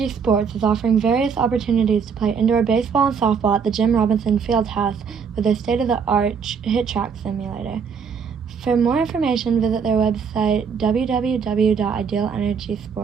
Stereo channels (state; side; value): quieter; left; 6.3 dB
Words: Sports is offering various opportunities to play indoor baseball and softball at the Jim Robinson Fieldhouse with their state-of-the-art hit track simulator. For more information, visit their website